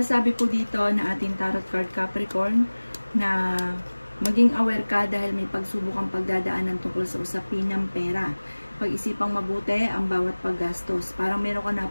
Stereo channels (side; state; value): both; inverted; correlation -1.00